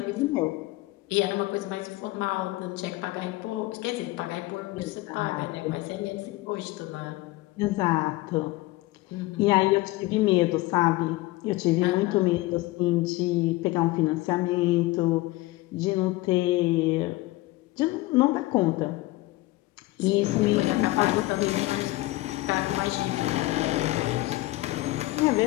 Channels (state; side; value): quieter; right; 19.4 dB